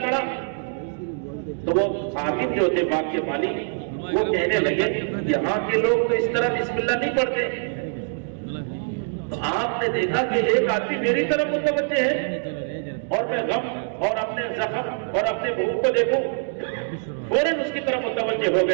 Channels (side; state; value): left; silent; 62 dB below the other